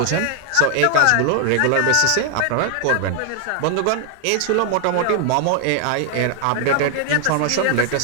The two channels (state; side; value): different; both; correlation 0.00